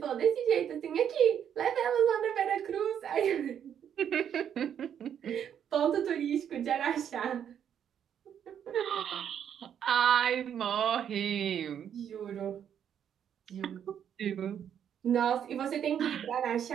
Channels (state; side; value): quieter; left; 8.9 dB